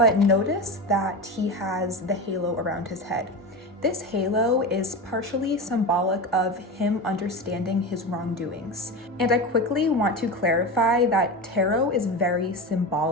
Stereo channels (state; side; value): normal; both; correlation 0.24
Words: notice that he has the halo around his head. This halo is partially symbolic of him understanding his wrongdoings. And I quickly want to clarify that tarot is very